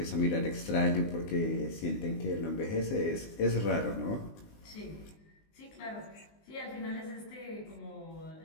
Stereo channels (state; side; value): late; right; 19 ms